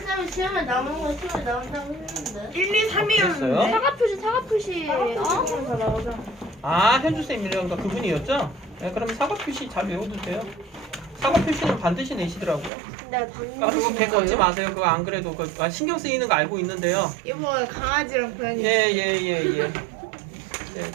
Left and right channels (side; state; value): left; drops out; at 12.7 s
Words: 시험에 나오는 거 시험에 나온다고 했는데. 1, 2, 3이었는데. 됐어요? 사과 표시 다 나오잖아. 아, 현주쌤이라던가 그분이었죠? 네, 그럼 사과 표시 잘 외워두세요. 사과 표시는 반드시 내시더라고요. 네, 아, 그거 개 걷지 마세요. 그거 안 그래도 신경 쓰이는 거 알고 있는데요. 이거 강아지랑 고양이. 예. 네,